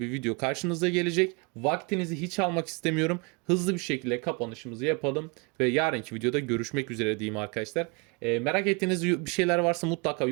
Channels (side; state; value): left; quieter; 31.4 dB